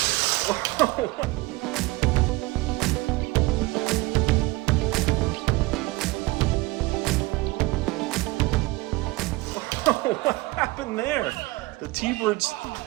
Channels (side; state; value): left; quieter; 21.0 dB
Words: What happened there? The T-Birds